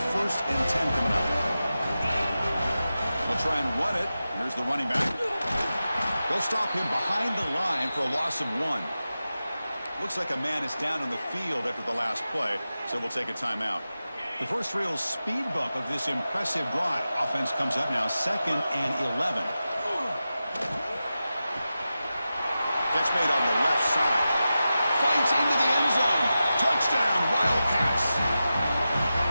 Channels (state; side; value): inverted; both; correlation -0.93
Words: 1st and 10 coming up. try and run it. Here's the running back. They'll stop him behind the line for a loss of 1. Looks like a man is down on the field after the last play, so we'll take a timeout. The first real speed bump of this impressive drive. Offense comes up now 2nd and 11. Catch made on the left side. Fights into the end zone. Touchdown, Wildcats.